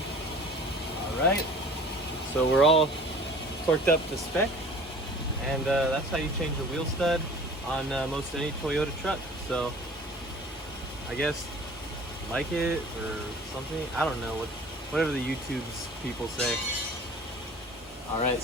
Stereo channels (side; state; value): both; normal; correlation 0.45